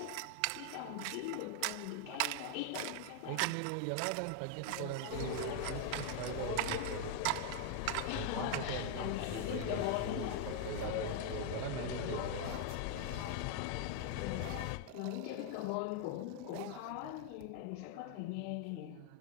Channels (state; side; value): different; both; correlation 0.00